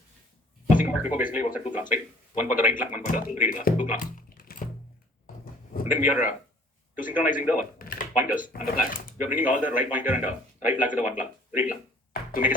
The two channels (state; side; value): normal; both; correlation 0.54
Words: Asynchronous FIFO basically works at two clocks, right? One for the write clock, one for the read clock, two clocks. And then we are to synchronizing the pointers and the flag. We are bringing all the right pointer and right flag to the one clock, read clock, to make